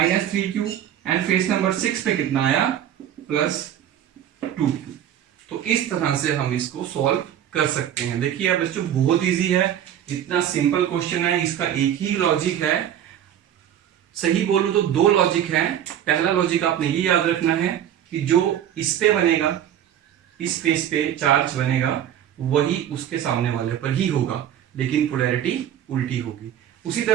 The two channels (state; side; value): quieter; left; 10.4 dB